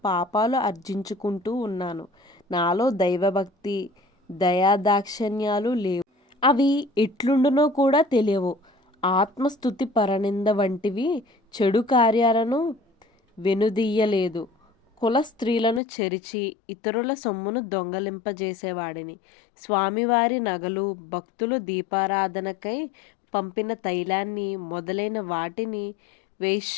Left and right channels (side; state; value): right; drops out; at 15.8 s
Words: పాపాలు ఆర్జించుకుంటూ ఉన్నాను. నాలో దైవభక్తి దయాదాక్షిణ్యాలు లేవు. అవి ఎట్లుండునో కూడా తెలియవు. ఆత్మస్థుతి పరనింద వంటివి చెడు కార్యాలను వెనుదీయలేదు. కుల స్త్రీలను చెరిచి ఇతరుల సొమ్మును దొంగలింపజేసేవాడిని. స్వామివారి నగలు, భక్తులు దీపారాధనకై పంపిన తైలాన్ని మొదలైన వాటిని